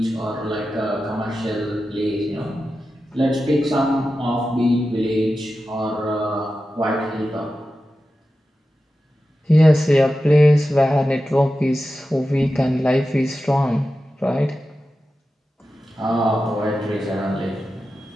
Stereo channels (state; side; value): normal; both; correlation 0.92